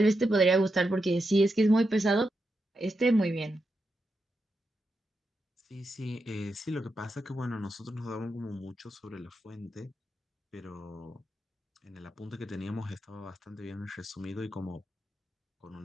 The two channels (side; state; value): both; normal; correlation 0.86